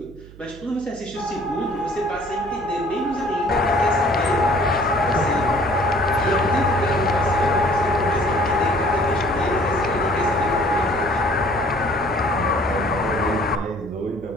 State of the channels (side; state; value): right; noise; hum, 20 dB below the sound